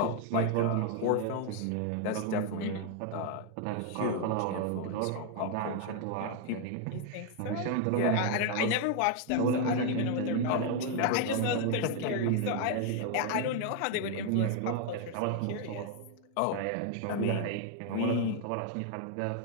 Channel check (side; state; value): both; different; correlation 0.00